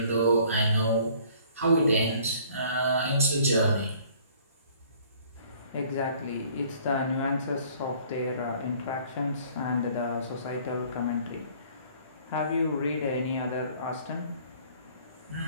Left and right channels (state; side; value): inverted; both; correlation -0.56